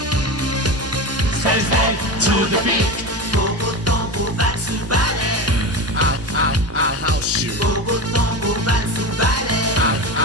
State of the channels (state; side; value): normal; both; correlation 0.24